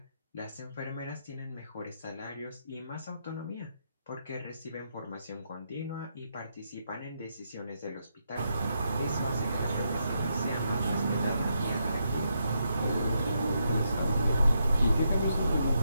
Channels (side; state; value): both; inverted; correlation -0.80